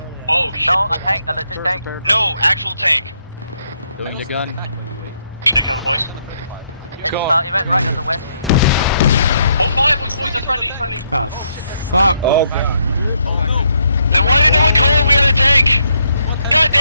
Oh shit. No, a tank, a legit tank. No, actual tank. Doing the gun. Take cover, boys. It went right on the west. Hold fire, boys. That's friendly. It's friendly. Oh, fuck. Oh god. Then why did no one call when we had a tank? God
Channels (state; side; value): inverted; both; correlation -0.75